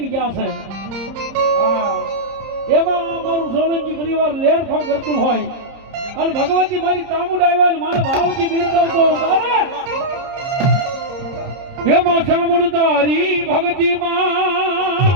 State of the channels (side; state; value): left; late; 30 ms